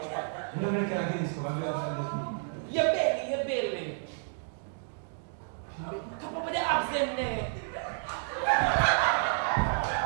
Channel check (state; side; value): silent; left; 57 dB below the other